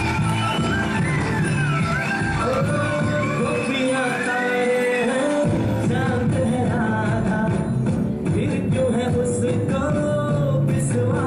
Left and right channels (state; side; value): identical; both; correlation 1.00